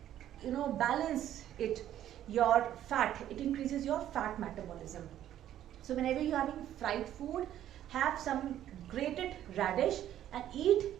balance it, your fat. It increases your fat metabolism. So whenever you're having fried food, have some grated radish and eat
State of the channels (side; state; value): left; quieter; 11.7 dB